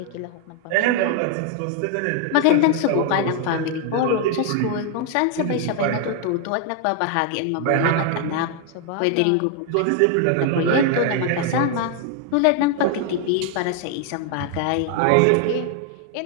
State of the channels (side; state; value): both; different; correlation 0.00